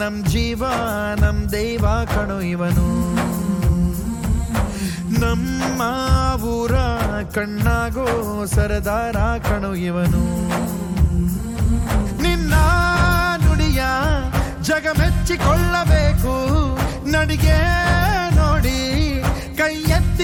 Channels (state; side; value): identical; both; correlation 1.00